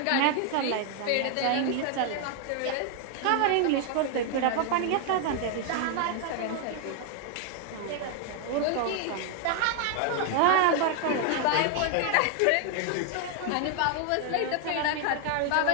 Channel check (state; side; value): different; both; correlation 0.00